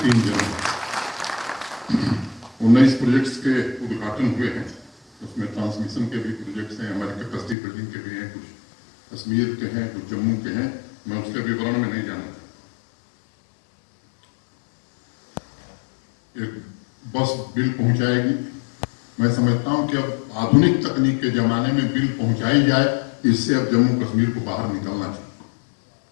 3 जनवरी 19 प्रोजेक्ट्स के उद्घाटन हुए हैं, उसमें ट्रांसमिशन के भी प्रोजेक्ट्स हैं, हमारे कैपेसिटी बिल्डिंग के भी हैं, कुछ कश्मीर के हैं, कुछ जम्मू के हैं, मैं उसके विवरण में नहीं जाना। एक बस बिल पहुंचाएगी, मैं समझता हूं कि अब आधुनिक तकनीक के जमाने में बिल पहुंचाई जाए, इससे अब जम्मू कश्मीर को बाहर निकलना चाहिए।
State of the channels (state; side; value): drops out; right; at 7.6 s